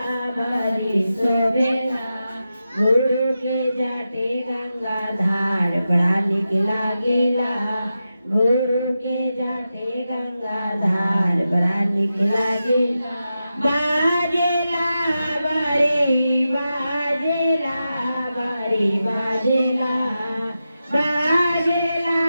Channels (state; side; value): inverted; both; correlation -0.90